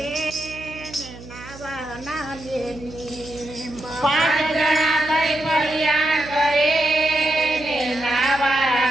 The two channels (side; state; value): right; noise; hum, 16 dB below the sound